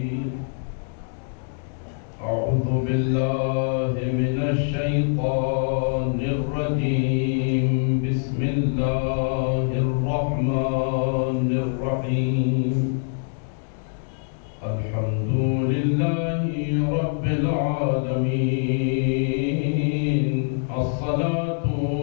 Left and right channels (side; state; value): right; silent; digital silence